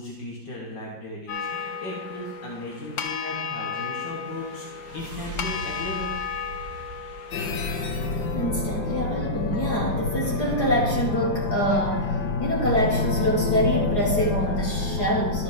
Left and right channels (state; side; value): late; right; 4.8 ms